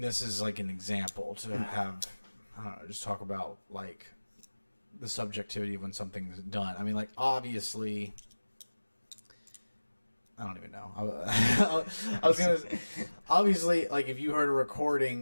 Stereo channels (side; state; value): both; inverted; correlation -1.00